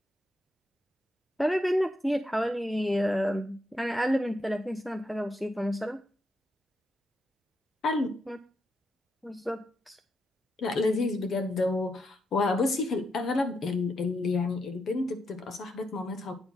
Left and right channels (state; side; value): normal; both; correlation 0.82